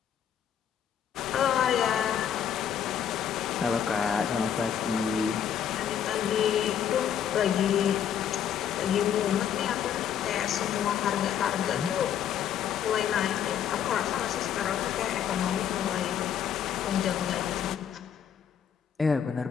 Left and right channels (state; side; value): quieter; right; 9.0 dB